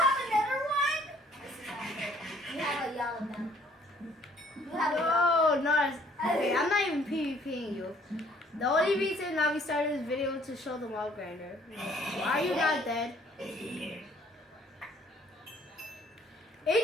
another one? This is not good. You have a yellow one. You have a yellow. No, okay, I'm not even PvPing you. The only reason that we started this video to show the mob grinder. Why are you not dead?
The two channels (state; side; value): normal; both; correlation 0.60